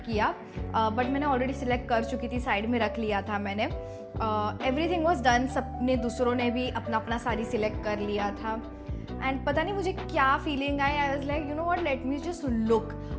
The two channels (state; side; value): identical; both; correlation 1.00